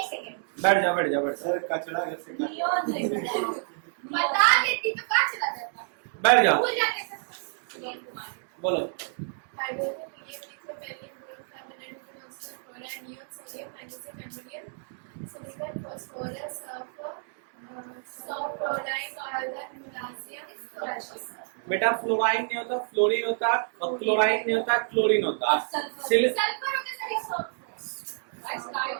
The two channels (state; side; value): silent; left; digital silence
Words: सेकंड बैठ जाओ बैठ जाओ बैठ जाओ, सर कचरा कैसे बता देती तो क्या चला जाता, बैठ जाओ, भूल जाते सर। बोलो। Hydrogen helium lithium beryllium boron carbon nitrogen oxygen chloride neon sodium magnesium aluminium silicon phosphorus sulphur chloride argon potassium chloride. बेटा फ्लोराइन नहीं होता, फ्लोरीन होता, और क्लोराइन नहीं होता, क्लोरीन होता। सल्फर होता सर